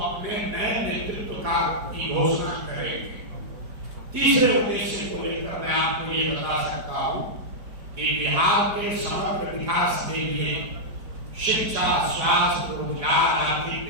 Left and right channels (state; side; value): late; left; 4.9 ms